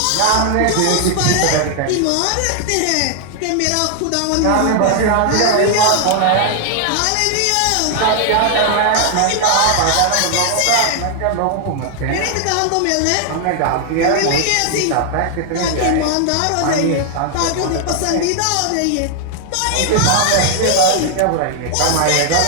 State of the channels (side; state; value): both; different; correlation 0.00